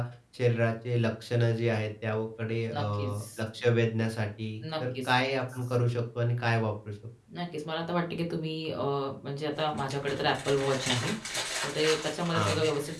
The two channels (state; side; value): identical; both; correlation 1.00